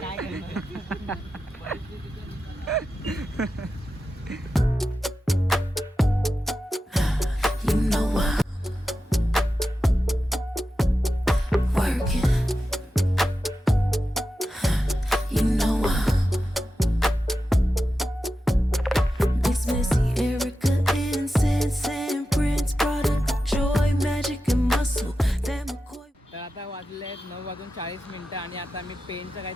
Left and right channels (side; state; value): both; normal; correlation 0.91